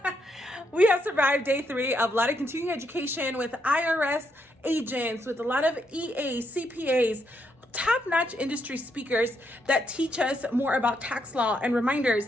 We have survived day 3 of a lot of continuing education with IRS agents, with a lot of EAs, CPAs, top-notch industry speakers that teach us more about tax law and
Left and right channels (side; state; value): both; normal; correlation 0.77